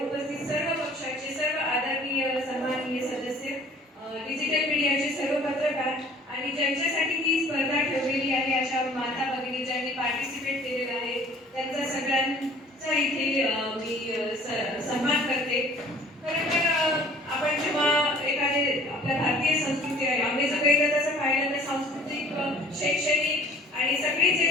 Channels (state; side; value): normal; both; correlation 0.51